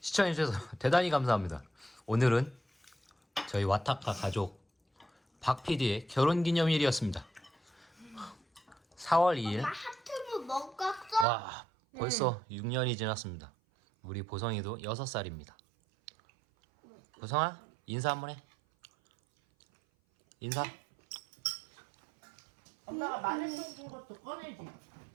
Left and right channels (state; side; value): drops out; left; at 11.2 s